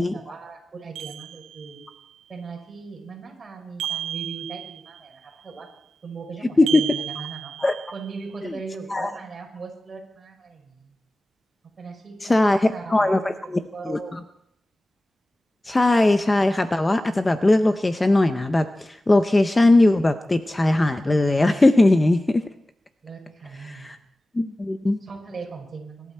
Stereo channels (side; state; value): both; normal; correlation 0.96